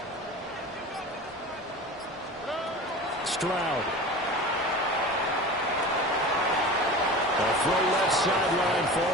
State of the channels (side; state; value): both; normal; correlation 0.34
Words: Stroud. A throw left sideline